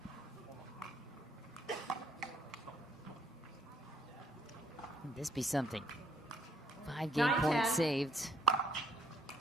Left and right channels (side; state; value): both; normal; correlation 0.68